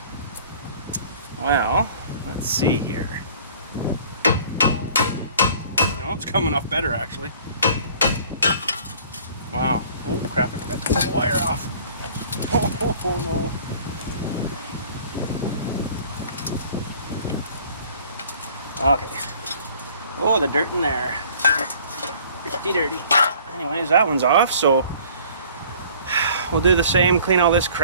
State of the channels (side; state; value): both; inverted; correlation -0.51